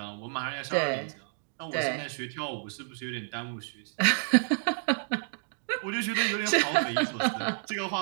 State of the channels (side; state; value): left; silent; digital silence